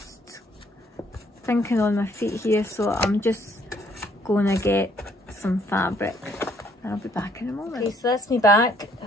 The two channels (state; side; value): normal; both; correlation 0.65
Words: thinking on my feet here, so I'm just going to get some fabric. I'll be back in a moment. Okay, so that's me back.